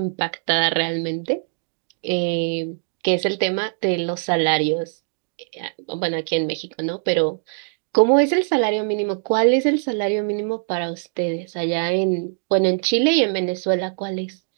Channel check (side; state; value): left; silent; digital silence